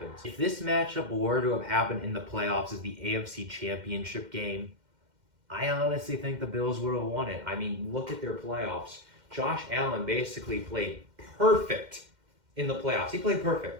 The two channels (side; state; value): left; late; 2.1 ms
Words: If this matchup were to have happened in the playoffs as the AFC Championship game, I honestly think the Bills would have won it. I mean, look at their playoffs. Josh Allen basically played perfect in the playoffs. He played